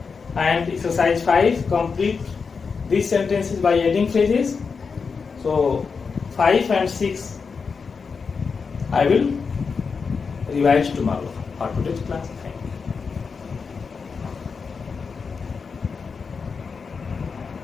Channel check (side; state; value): right; quieter; 5.3 dB